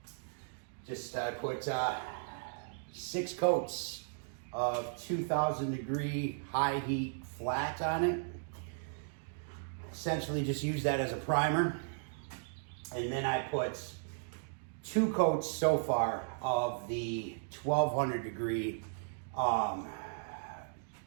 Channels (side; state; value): left; silent; digital silence